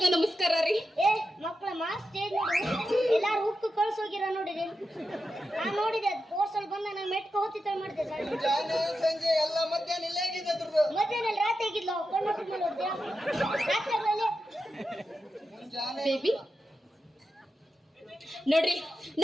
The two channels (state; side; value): normal; both; correlation 0.89